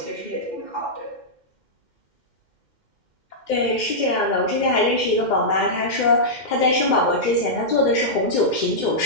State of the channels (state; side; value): late; right; 2.1 ms